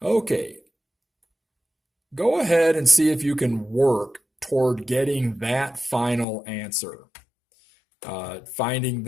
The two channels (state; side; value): drops out; right; at 6.2 s